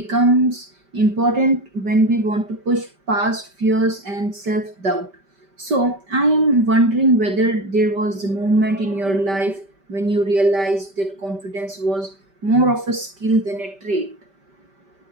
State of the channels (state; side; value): late; left; 5.1 ms